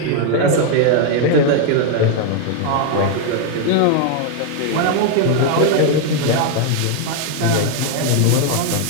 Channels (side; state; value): both; different; correlation 0.00